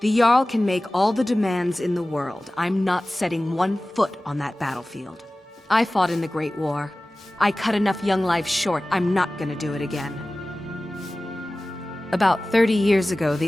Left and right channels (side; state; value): both; normal; correlation 0.97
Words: Jarl can make all the demands in the world. I'm not setting one foot on that battlefield. I fought in the Great War. I cut enough young lives short. I'm not gonna do it again. About 30 years ago,